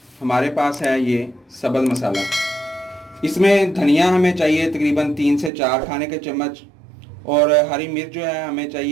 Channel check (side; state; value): left; drops out; at 5.5 s